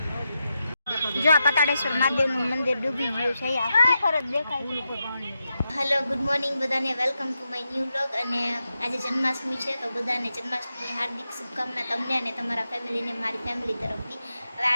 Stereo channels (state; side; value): inverted; both; correlation -0.88